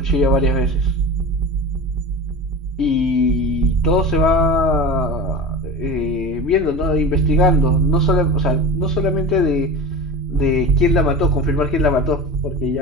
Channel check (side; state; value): both; normal; correlation 0.30